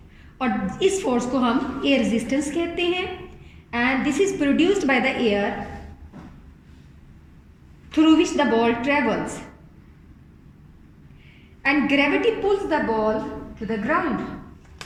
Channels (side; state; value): both; identical; correlation 1.00